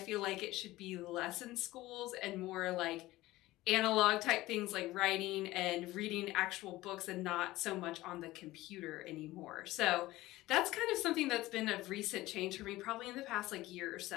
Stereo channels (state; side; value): quieter; right; 17.7 dB